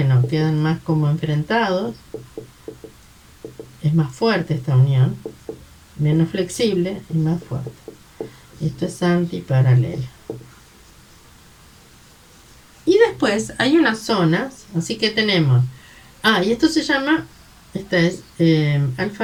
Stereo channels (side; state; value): both; identical; correlation 1.00